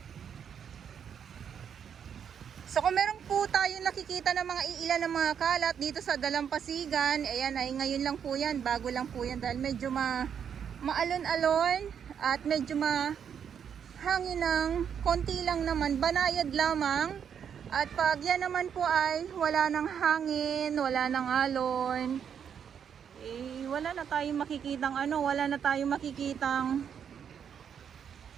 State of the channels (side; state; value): left; quieter; 7.9 dB